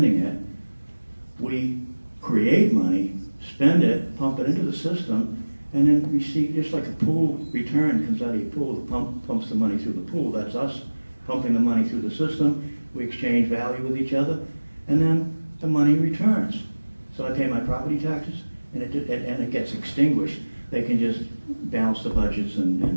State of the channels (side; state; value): both; inverted; correlation -1.00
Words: it, we create money, spend it, pump it into the system, and then receive, just like a pool return comes out of your pool, the pump pumps the money through the pool. That's us pumping the money through the system. We exchange value with each other, and then the money returns. So I pay my property taxes, and it gets extinguished. They can just balance the budgets,